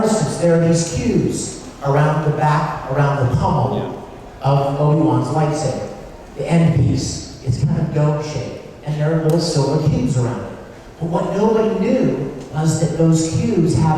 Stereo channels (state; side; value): identical; both; correlation 1.00